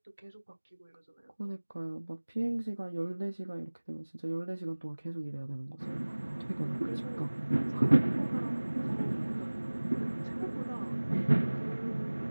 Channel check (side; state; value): both; inverted; correlation -1.00